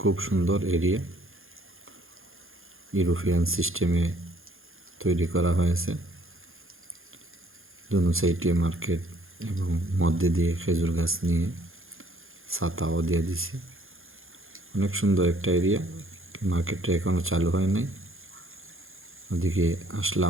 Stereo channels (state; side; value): late; left; 0.60 ms